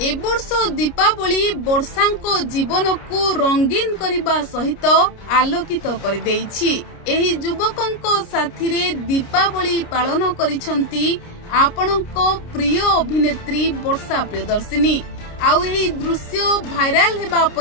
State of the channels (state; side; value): late; right; 29 ms